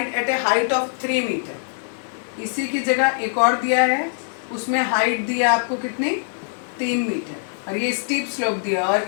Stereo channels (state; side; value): silent; right; 60 dB below the other